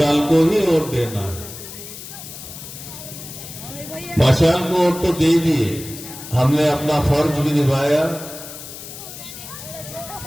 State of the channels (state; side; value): noise; left; hiss, 12 dB below the sound